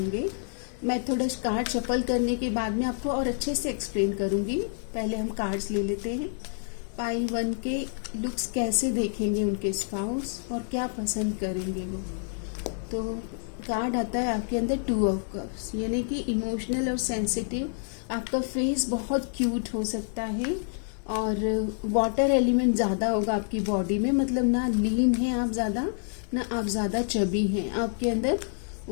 मैं थोड़ा कार्ड शफल करने के बाद में आपको और अच्छे से एक्सप्लेन करूंगी। पहले हम कार्ड्स ले लेते हैं। पाइल 1 के लुक्स कैसे देखेंगे उनके स्पाउस और क्या पसंद करेंगे वो। तो कार्ड आता है आपके अंदर 2 ऑफ कप्स, यानी कि इमोशनल और सेंसिटिव। आपका फेस बहुत क्यूट हो सकता है और वाटर एलिमेंट ज़्यादा होगा आपकी बॉडी में। मतलब ना लीन है आप ज़्यादा, ना आप ज़्यादा चबी हैं। आपके अंदर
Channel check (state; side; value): silent; right; 59 dB below the other